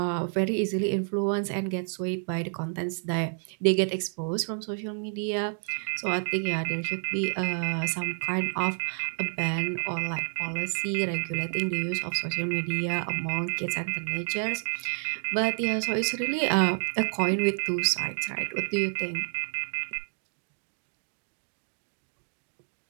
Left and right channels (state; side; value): silent; left; digital silence